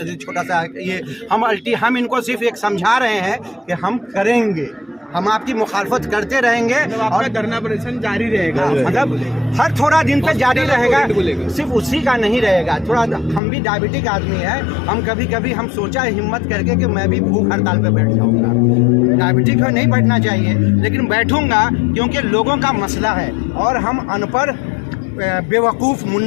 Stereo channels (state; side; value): drops out; right; at 13.4 s